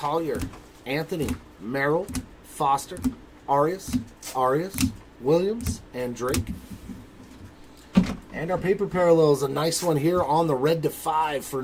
Anthony, Merrill, Foster, Arias, Williams, and Drake. And our paper parallels, a nice one here on the red to 5 for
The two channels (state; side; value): identical; both; correlation 1.00